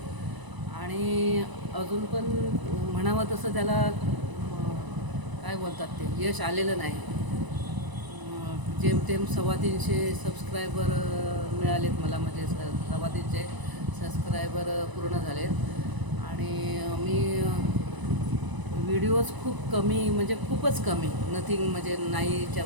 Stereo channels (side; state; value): left; late; 1.0 ms